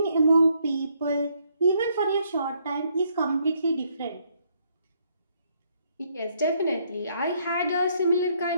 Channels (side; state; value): both; inverted; correlation -0.71